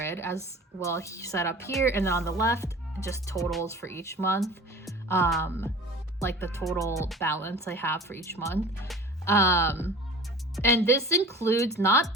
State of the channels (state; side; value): normal; both; correlation 0.40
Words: as well set up here, and then on the left, just totals for each month, like the total balance I have for each month. And this includes not